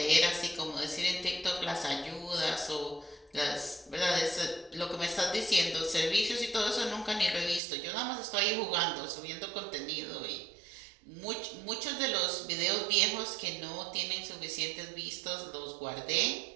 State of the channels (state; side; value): drops out; left; at 7.6 s